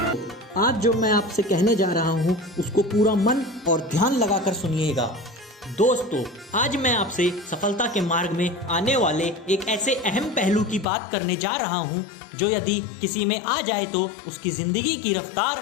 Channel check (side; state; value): right; drops out; at 10.9 s